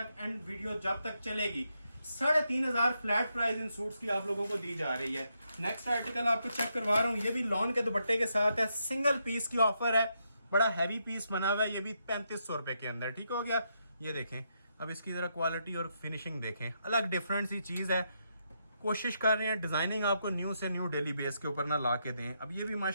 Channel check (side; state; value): both; inverted; correlation -0.80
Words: एंड वीडियो जब तक चलेगी 3500 फ्लैट प्राइस इन सूट्स की आप लोगों को दी जा रही है। नेक्स्ट आर्टिकल आपको चेक करवा रहा हूँ, ये भी लॉन के दुपट्टे के साथ है, सिंगल पीस की ऑफर है, बड़ा हैवी पीस बना हुआ है, ये भी 3500 रुपए के अंदर, ठीक हो गया। ये देखें, अब इसकी जरा क्वालिटी और फिनिशिंग देखें, अलग डिफरेंट सी चीज है। कोशिश कर रहे हैं डिजाइनिंग आपको न्यू से न्यू डेली बेस के ऊपर ना ला के दें। अब ये भी